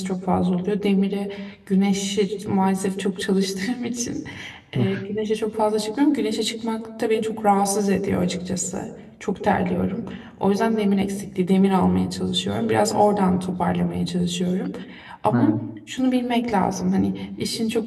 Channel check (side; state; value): both; identical; correlation 1.00